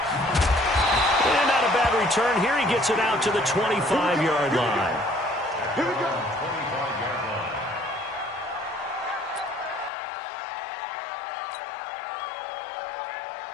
not a bad return. Here he gets it out to the 25-yard line. Here we go. 25-yard line.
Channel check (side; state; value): right; drops out; at 9.9 s